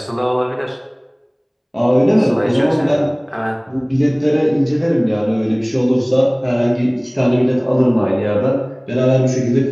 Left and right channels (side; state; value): both; identical; correlation 1.00